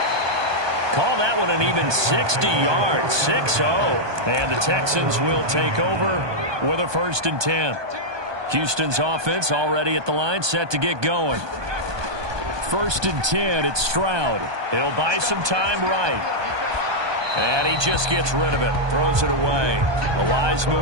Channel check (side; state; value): left; late; 1.2 ms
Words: Call that one an even 60 yards, 6-0. And the Texans will take over with a 1st and 10. Houston's offense already at the line, set to get going. 1st and 10, it's Stroud. He'll buy some time right. And he just gets rid of it, throws it away. A wise